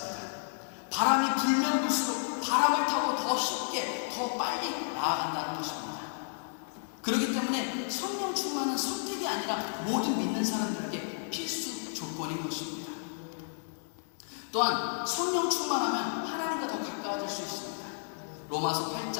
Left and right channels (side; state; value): right; silent; 56 dB below the other